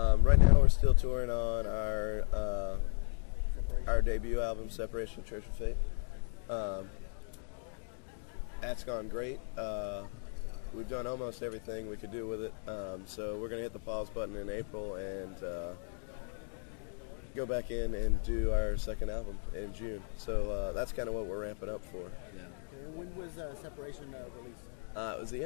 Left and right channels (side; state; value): right; silent; 54 dB below the other